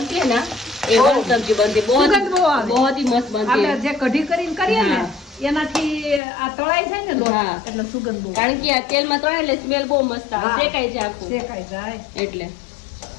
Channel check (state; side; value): drops out; right; at 6.2 s